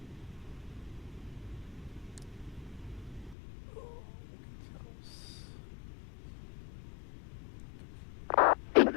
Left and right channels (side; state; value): right; drops out; at 3.4 s